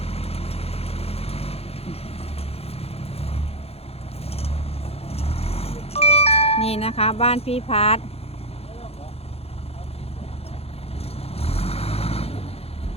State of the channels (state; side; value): late; right; 0.29 ms